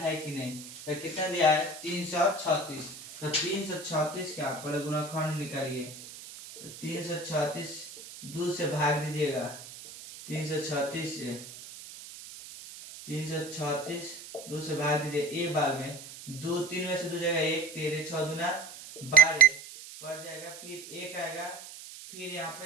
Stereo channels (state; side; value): noise; right; hiss, 14 dB below the sound